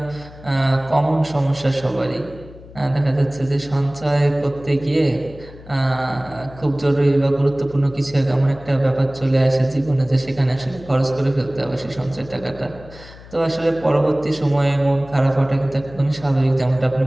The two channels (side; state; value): left; noise; hum, 19 dB below the sound